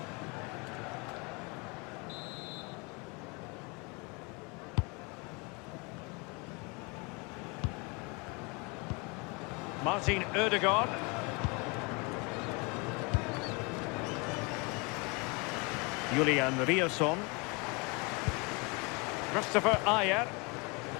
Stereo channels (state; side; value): quieter; right; 29.7 dB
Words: Martin Ødegaard. Julian Ryerson. Christopher Ajer.